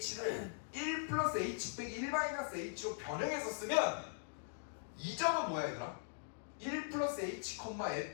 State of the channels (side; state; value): right; silent; digital silence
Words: 1 플러스 h 빼기 1 마이너스 h로 변형해서 쓰면 이 점은 뭐야, 얘들아? 1 플러스 h,